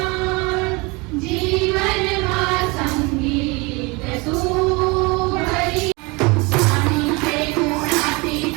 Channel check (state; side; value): quieter; left; 26.7 dB